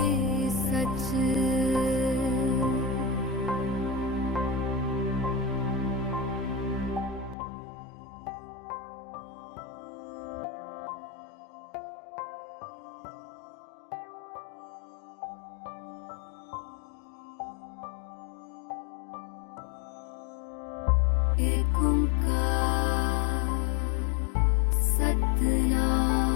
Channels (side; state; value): right; drops out; at 7.4 s